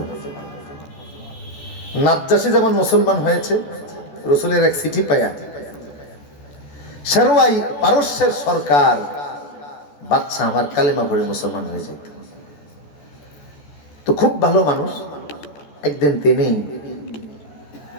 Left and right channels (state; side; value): late; right; 14 ms